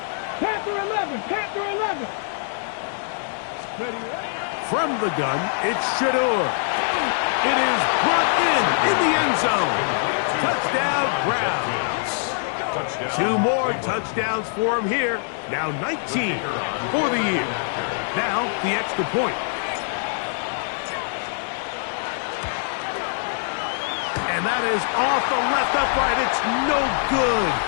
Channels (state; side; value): silent; right; digital silence